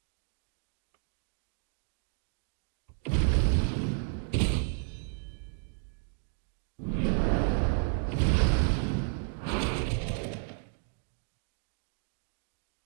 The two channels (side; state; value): left; silent; 56 dB below the other